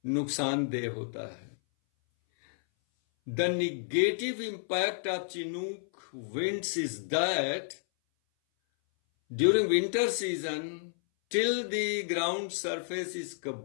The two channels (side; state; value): right; silent; 57 dB below the other